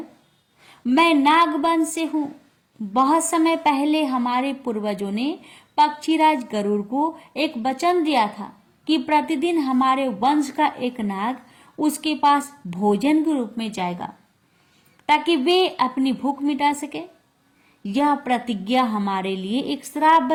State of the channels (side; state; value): both; identical; correlation 1.00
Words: मैं नागवंश से हूं। बहुत समय पहले हमारे पूर्वजों ने पक्षीराज गरुड़ को एक वचन दिया था कि प्रतिदिन हमारे वंश का एक नाग उसके पास भोजन के रूप में जाएगा ताकि वे अपनी भूख मिटा सके। यह प्रतिज्ञा हमारे लिए एक श्राप